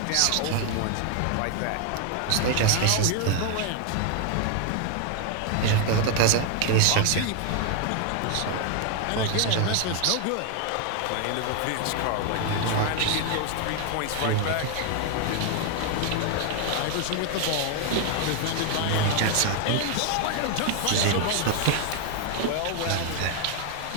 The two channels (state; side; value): different; both; correlation 0.00